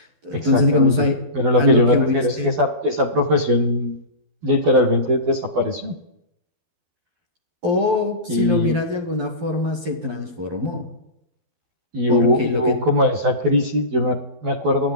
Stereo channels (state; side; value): late; left; 12 ms